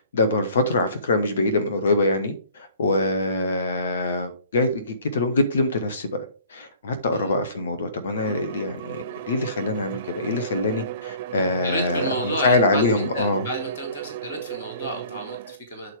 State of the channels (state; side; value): inverted; both; correlation -0.51